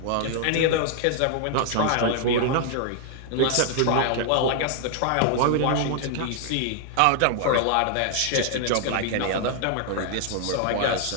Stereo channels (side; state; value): both; different; correlation 0.00